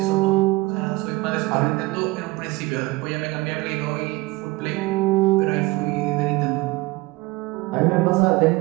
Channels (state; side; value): quieter; left; 21.2 dB